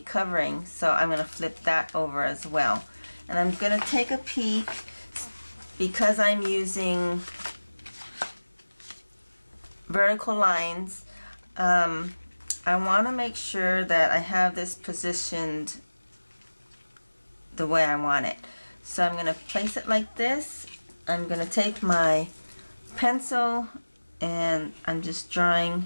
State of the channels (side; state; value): both; inverted; correlation -1.00